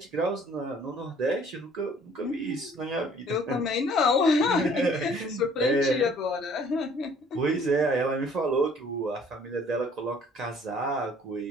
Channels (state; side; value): normal; both; correlation 0.56